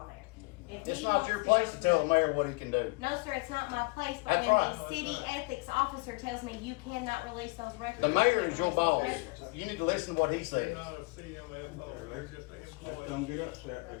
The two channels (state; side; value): quieter; right; 28.3 dB